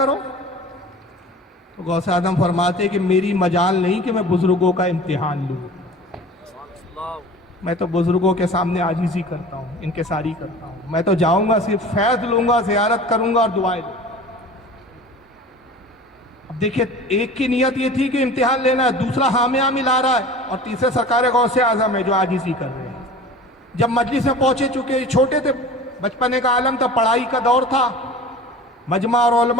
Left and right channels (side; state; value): both; normal; correlation 0.39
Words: تو غوث اعظم فرماتے کہ میری مجال نہیں کہ میں بزرگوں کا امتحان لوں, میں تو بزرگوں کے سامنے عاجزی کرتا ہوں, انکساری کرتا ہوں. میں تو جاؤں گا صرف فیض لوں گا, زیارت کروں گا اور دعائیں دوں گا. اب دیکھیے ایک کی نیت یہ تھی کہ امتحان لینا ہے, دوسرا حامیہ ملا رہا ہے, اور تیسرے سرکار غوث اعظم ہے جو عاجزی کر رہے ہیں. جب مجلس میں پہنچے, چکے چھوٹے تھے, بچپنے کا عالم تھا, پڑھائی کا دور تھا, مجمع اور